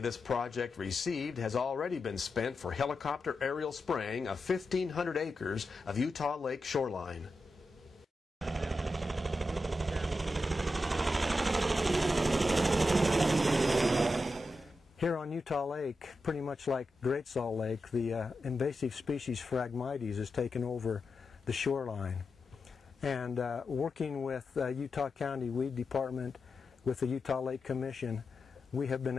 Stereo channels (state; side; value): normal; both; correlation 0.89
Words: this project received has already been spent for helicopter aerial spraying of 1,500 acres of Utah Lake shoreline. Here on Utah Lake, pretty much like Great Salt Lake, the invasive species Phragmites has taken over the shoreline. And working with Utah County Weed Department, with the Utah Lake Commission, we have been